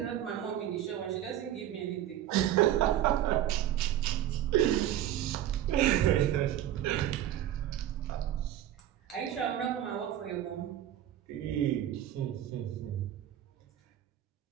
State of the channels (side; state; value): left; quieter; 11.8 dB